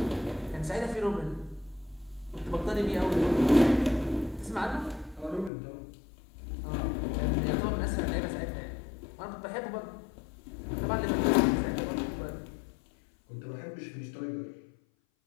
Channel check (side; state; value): right; drops out; at 5.5 s